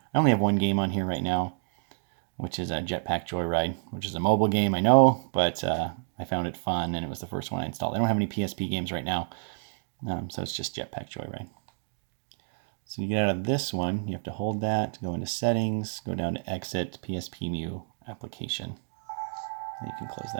I only have one game on here right now, which is a Jetpack Joyride, which is a mobile game, I know, but I found it fun, and it was the first one I installed. I don't have any PSP games right now, so it's just Jetpack Joyride. So you get out of this one, you have to hold that, go into Settings, go down to Exit, PSPmu Application, and you can close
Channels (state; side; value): silent; left; digital silence